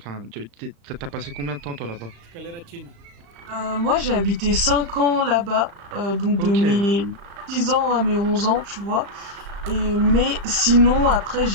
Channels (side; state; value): left; late; 35 ms